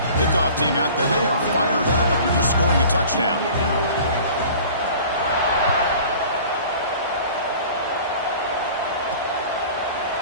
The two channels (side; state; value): both; inverted; correlation -0.44